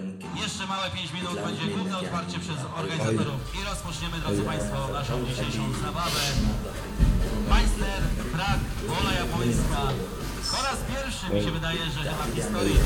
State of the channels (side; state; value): both; identical; correlation 1.00